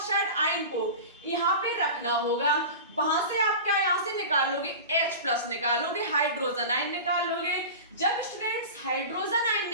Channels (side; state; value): both; inverted; correlation -0.31